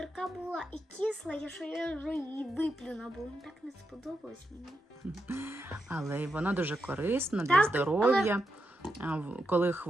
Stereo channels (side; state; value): both; normal; correlation 0.84